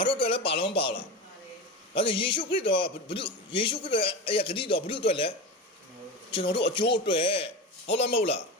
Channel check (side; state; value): both; normal; correlation 0.24